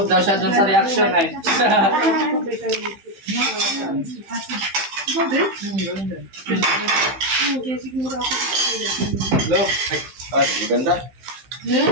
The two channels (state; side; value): late; left; 15 ms